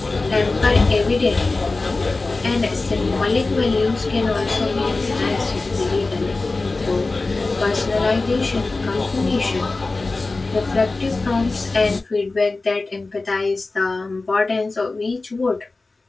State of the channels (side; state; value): right; quieter; 3.5 dB